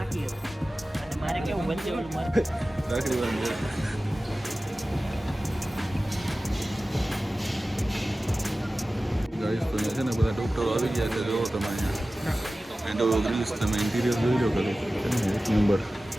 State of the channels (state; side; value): normal; both; correlation 0.96